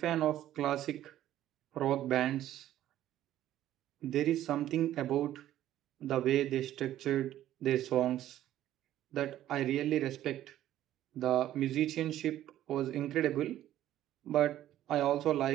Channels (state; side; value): quieter; left; 12.8 dB